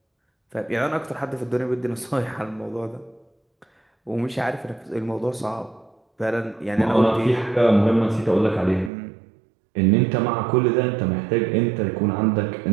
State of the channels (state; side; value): drops out; left; at 8.9 s